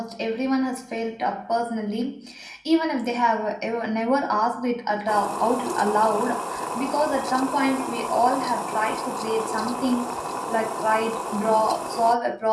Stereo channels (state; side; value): identical; both; correlation 1.00